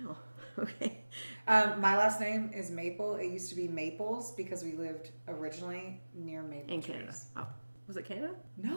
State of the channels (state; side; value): inverted; both; correlation -1.00